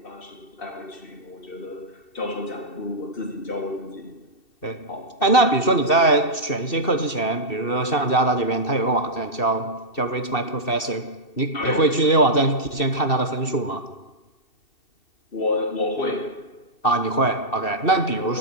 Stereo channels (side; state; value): right; late; 2.7 ms